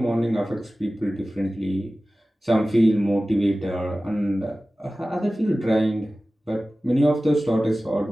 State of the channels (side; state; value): both; normal; correlation 0.96